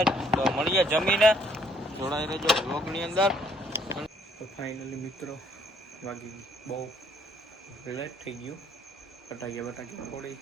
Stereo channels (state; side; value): normal; both; correlation 0.64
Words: તો મળીએ જમીને. જોડાઈ રહેજો વ્લોગ ની અંદર. તો ફાઇનલી મિત્રો વાગી બહુ લેટ થઈ ગયું. ફટાકિયા ફોડી